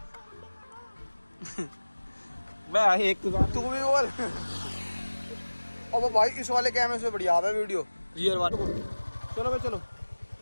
भाई एक तो तू भी बोल। अब भाई इस वाले कैमरे से बढ़िया है वीडियो क्लियर बात। चलो भाई चलो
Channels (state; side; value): inverted; both; correlation -1.00